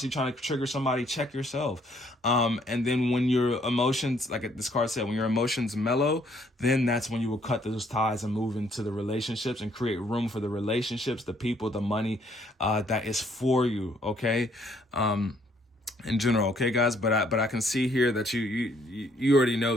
trying to trigger somebody, check yourself. And then when your emotions, like this card said, when your emotions mellow, then that's when you will cut those ties and move into the relationships and create room for the relationships, the people, the money that is for you. Okay. in general, okay, guys. But I can see here that you already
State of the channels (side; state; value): both; normal; correlation 0.66